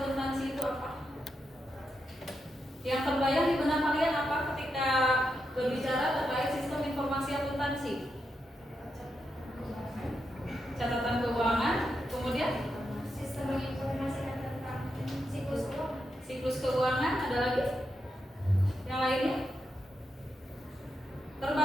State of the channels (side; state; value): both; normal; correlation 0.85